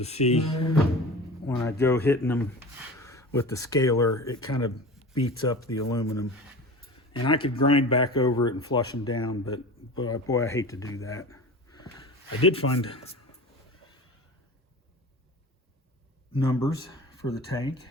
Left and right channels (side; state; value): both; normal; correlation 0.34